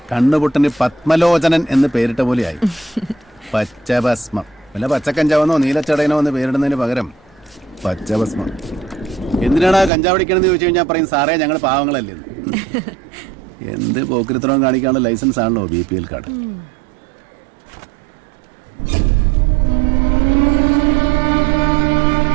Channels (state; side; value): drops out; left; at 9.9 s